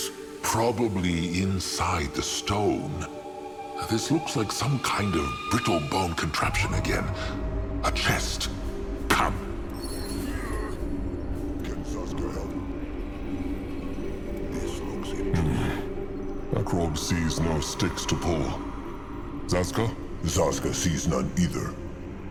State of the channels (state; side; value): identical; both; correlation 1.00